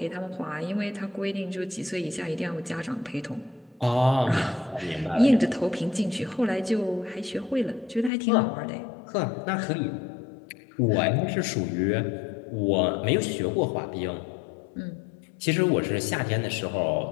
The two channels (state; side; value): drops out; right; at 8.1 s